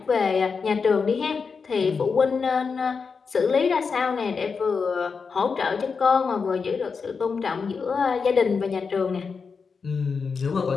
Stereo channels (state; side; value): quieter; right; 5.3 dB